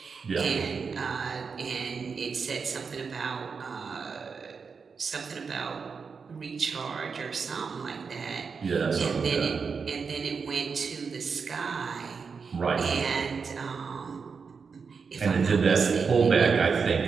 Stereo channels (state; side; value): quieter; left; 5.4 dB